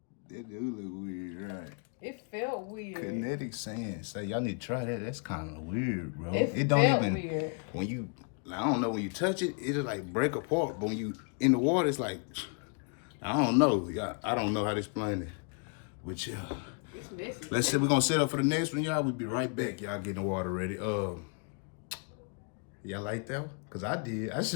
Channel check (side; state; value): right; quieter; 38.1 dB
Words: It do look weird, right? It felt weird. Kinetic sand. Say, y'all need to try that. That's kind of weird, bro. It don't felt even, weird. when you, I don't know, when you touch it, it'll like break apart. But when you in the water, it's like, I don't know. Y'all, I don't know how to explain it. But yeah. It's messy. Let's see, we're gonna set up for the next one, y'all. We'll be right back. Y'all getting the water ready. Y'all like that one? Cause I did. I